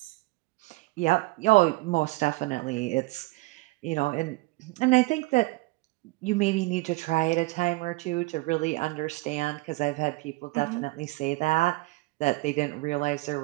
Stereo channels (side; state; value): left; quieter; 22.9 dB